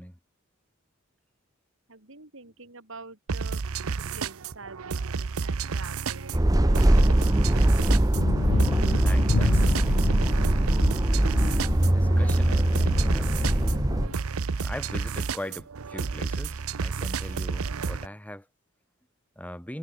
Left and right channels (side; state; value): both; normal; correlation 0.90